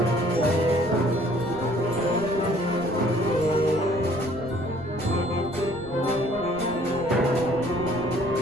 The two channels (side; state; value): right; noise; rumble, 17 dB below the sound